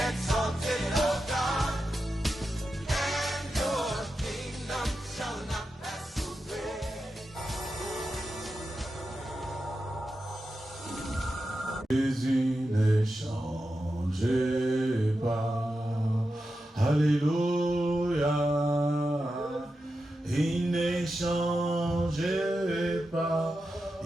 Jésus ne change pas, alléluia, il ne change pas,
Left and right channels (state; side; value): normal; both; correlation 0.90